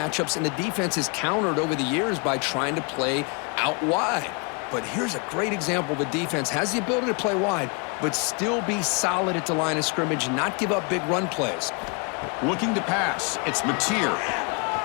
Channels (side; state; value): right; quieter; 34.1 dB